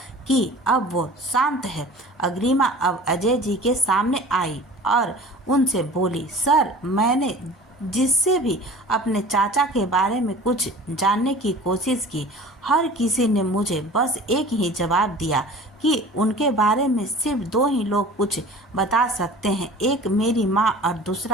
कि अब वो शांत है। अग्रिमा अब अजय जी के सामने आई और उनसे बोली, सर, मैंने जिससे भी अपने चाचा के बारे में कुछ जानने की कोशिश की, हर किसी ने मुझे बस एक ही जवाब दिया कि उनके बारे में सिर्फ दो ही लोग कुछ बता सकते हैं, एक मेरी माँ और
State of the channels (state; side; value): normal; both; correlation 0.43